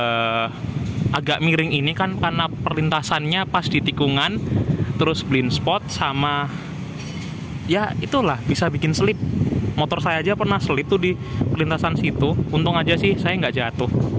agak miring ini kan, karena perlintasannya pas di tikungan, terus blind spot sama ya itulah bisa bikin selip. Motor saya aja pernah selip tuh di perlintasan situ. Untung aja sih saya nggak jatuh.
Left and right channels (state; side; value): identical; both; correlation 1.00